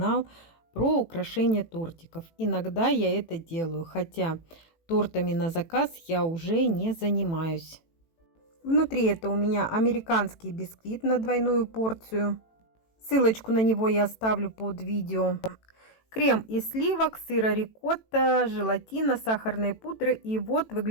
про украшение тортиков. Иногда я это делаю, хотя тортами на заказ я уже не занимаюсь. Внутри это у меня американский бисквит на двойную порцию. Ссылочку на него я оставлю под видео. Крем из сливок, сыра рикотта, желатина, сахарной пудры. И вот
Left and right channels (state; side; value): late; right; 18 ms